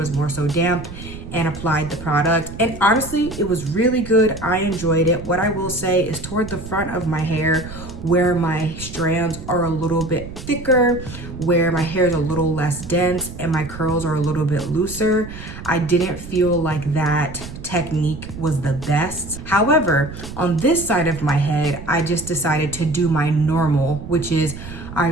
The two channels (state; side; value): noise; right; rumble, 12 dB below the sound